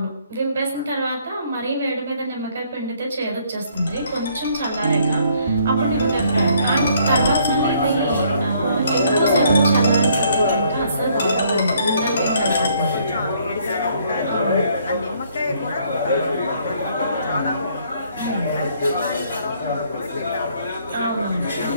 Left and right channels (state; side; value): inverted; both; correlation -0.65